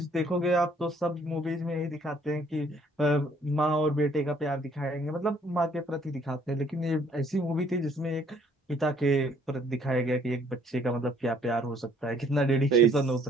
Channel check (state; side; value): normal; both; correlation 0.62